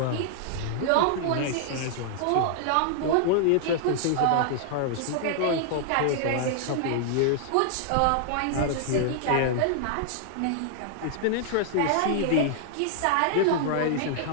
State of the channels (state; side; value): different; both; correlation -0.01